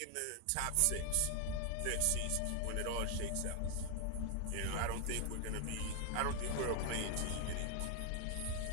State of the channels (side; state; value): both; different; correlation 0.00